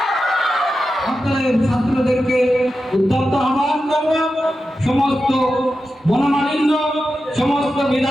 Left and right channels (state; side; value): normal; both; correlation 0.91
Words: আপনাদের ছাত্রদেরকে উদ্যত আহ্বান করব, সমস্ত মনোমালিন্য, সমস্ত